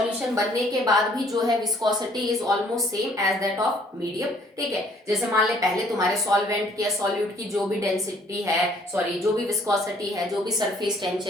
बनने के बाद भी जो है viscosity is almost same as that of medium. ठीक है, जैसे मान ले पहले तुम्हारे सॉल्वेंट की या सॉल्यूट की जो भी डेंसिटी है, सॉरी जो भी विस्कोसिटी है, जो भी सरफेस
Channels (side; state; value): both; normal; correlation 0.61